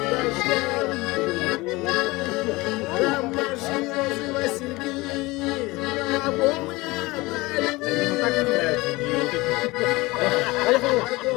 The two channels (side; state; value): right; quieter; 21.9 dB